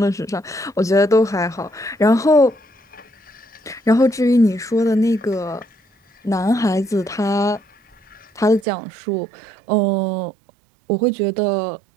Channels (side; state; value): left; drops out; at 8.7 s